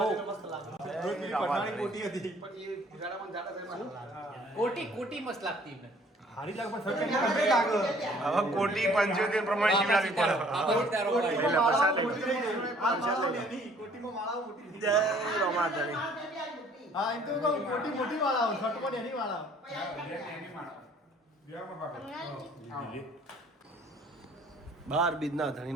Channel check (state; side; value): normal; both; correlation 0.57